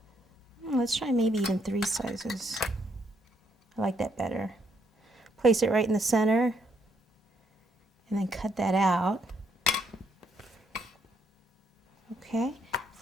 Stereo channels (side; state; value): both; normal; correlation 0.72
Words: Let's try maybe even 3 sizes. I like that better. Place it right in the center and then cut that out. Okay,